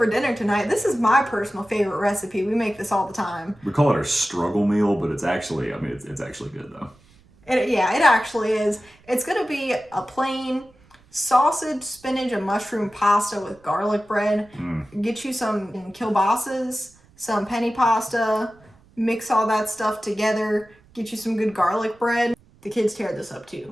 dinner tonight, this is my personal favorite recipe. We make this all the time. We call it our struggle meal, but it's actually, it's actually good, though. It actually is. It's going to be a plain sausage, spinach, and mushroom pasta with garlic bread. Get you some kielbasa's, some penny pasta, mix all that stuff together, get you some good garlic bread. The kids tear this up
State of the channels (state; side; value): noise; right; rumble, 29 dB below the sound